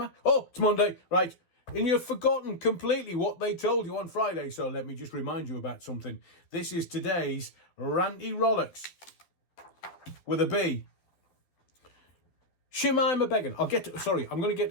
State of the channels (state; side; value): late; right; 12 ms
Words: I? Oh, it's Monday, right. And you've forgotten completely what they told you on Friday, so let me just remind you about something. This is today's Ranty Rolex with a B. Shemima Begum. I'm going to get